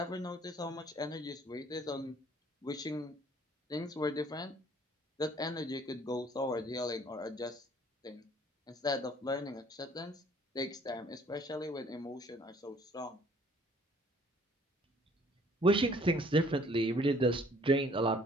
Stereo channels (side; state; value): both; normal; correlation 0.58